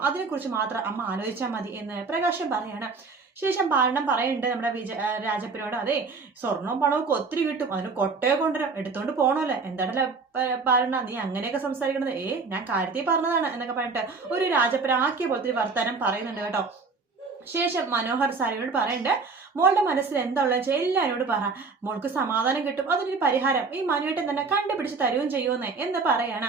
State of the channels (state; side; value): quieter; left; 4.5 dB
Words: അതിനെക്കുറിച്ച് മാത്രം അമ്മ ആലോചിച്ചാൽ മതി എന്ന് പ്രകാശൻ പറയാണ്. ശേഷം പാലനം പറയുന്നുണ്ട് നമ്മുടെ രാജപ്പനോട്, അതെ സ്വർണവും പണവും ഒക്കെ ഒത്തിരി കിട്ടും, അതിന് കൊട്ടയെ കൊണ്ടുവരാം, എടുത്തോണ്ട് പോണല്ലേ. എന്താണല്ലേ പാലന നീ അങ്ങനെയൊക്കെ സംസാരിക്കണത്? ഞാൻ കാര്യത്തിൽ പറഞ്ഞതാണ് എന്നൊക്കെ പറഞ്ഞിട്ട് ഒരു രാജപ്പനാക്കിയ പോലത്തെ വർത്താനം പറയുന്നുണ്ട് കേട്ടോ. ശേഷം മനോഹർ സാരിയോട് പറയുന്നുണ്ട്, മോളുടെ മനസ്സിൽ എന്താ ഉള്ളത് വെച്ചാൽ എല്ലാവരോട് പറ, മോൾക്ക് സമാധാനം കിട്ടും, അതിനൊരു പരിഹാരം ഈ മനുവേട്ടൻ തന്നെ കണ്ടുപിടിച്ച് തരുകയും ചെയ്യുമെന്നേ എന്ന് പറയാണ്.